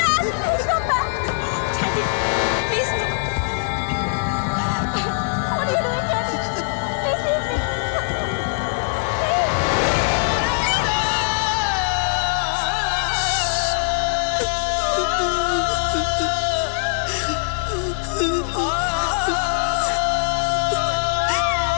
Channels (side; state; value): right; silent; digital silence